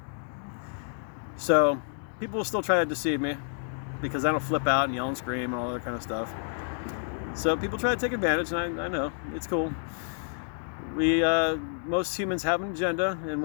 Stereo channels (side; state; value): right; silent; digital silence